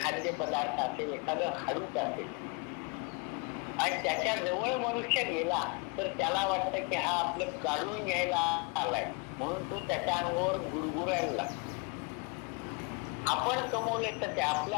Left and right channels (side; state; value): right; quieter; 31.3 dB